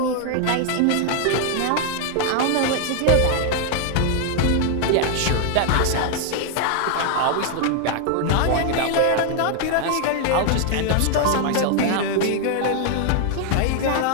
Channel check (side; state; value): both; different; correlation 0.00